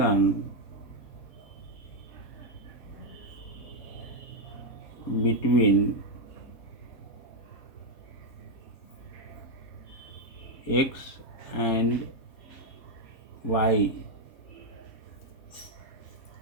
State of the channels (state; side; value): late; right; 3.7 ms